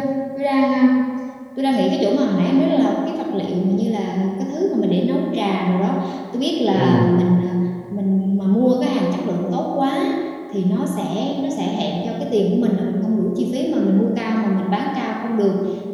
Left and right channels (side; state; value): both; identical; correlation 1.00